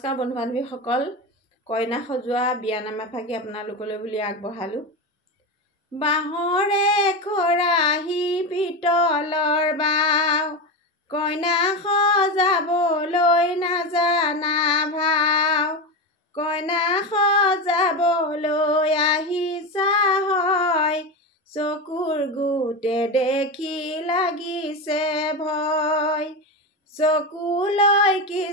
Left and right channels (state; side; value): normal; both; correlation 0.18